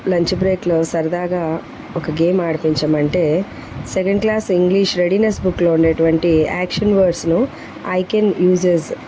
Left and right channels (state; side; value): identical; both; correlation 1.00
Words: లంచ్ బ్రేక్లో సరదాగా ఒక గేమ్ ఆడిపించమంటే సెకండ్ క్లాస్ ఇంగ్లీష్ రెడీనెస్ బుక్లో ఉండేటువంటి యాక్షన్ వర్డ్స్ను I can uses